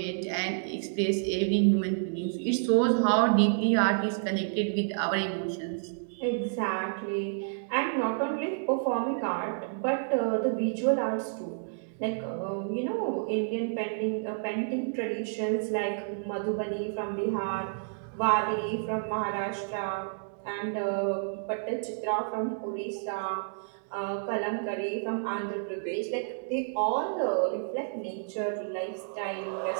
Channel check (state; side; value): silent; left; digital silence